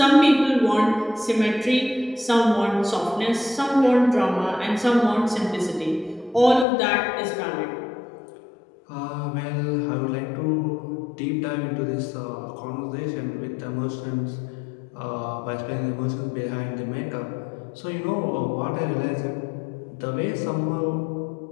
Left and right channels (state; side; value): drops out; right; at 6.7 s